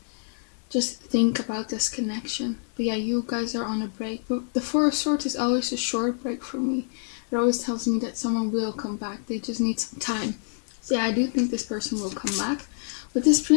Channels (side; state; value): right; silent; digital silence